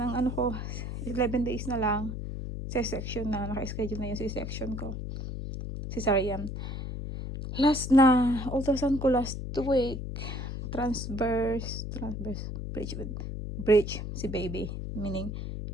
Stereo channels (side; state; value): left; noise; hum, 5 dB below the sound